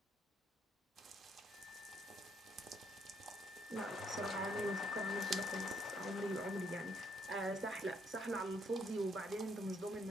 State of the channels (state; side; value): normal; both; correlation 0.70